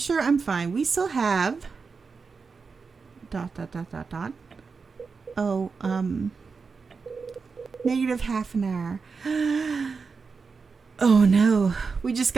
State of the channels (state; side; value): quieter; left; 4.9 dB